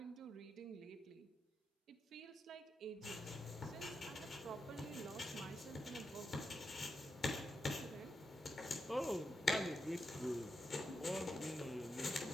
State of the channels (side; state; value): both; normal; correlation 0.86